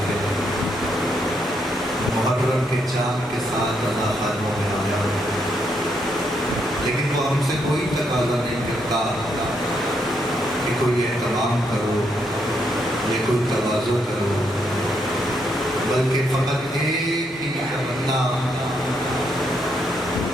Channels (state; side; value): normal; both; correlation 0.77